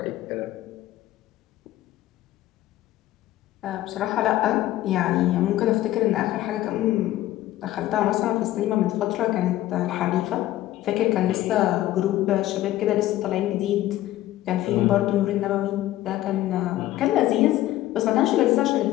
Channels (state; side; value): quieter; right; 14.8 dB